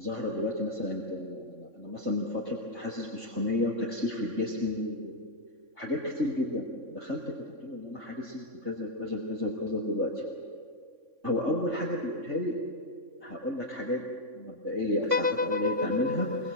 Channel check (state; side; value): late; left; 3.6 ms